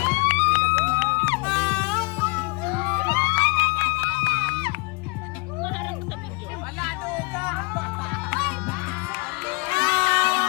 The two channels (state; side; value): quieter; right; 30.0 dB